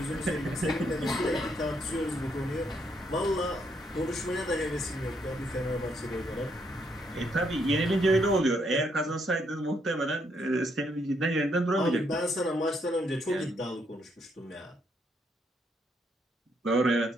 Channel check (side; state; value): both; normal; correlation 0.74